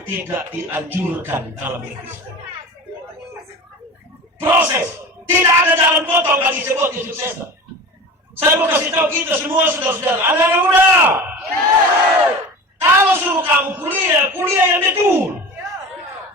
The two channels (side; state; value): both; normal; correlation 0.34